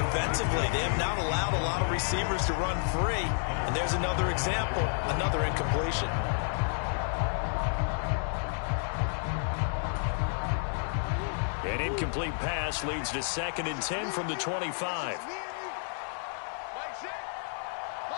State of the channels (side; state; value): right; silent; 57 dB below the other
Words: They have not allowed a lot of receivers to run free. And there's another example, another incompletion. An incomplete pass leads to 2nd and 10 from the 25.